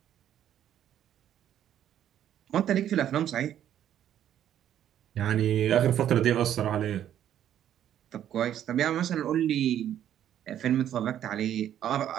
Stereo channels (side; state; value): left; quieter; 10.7 dB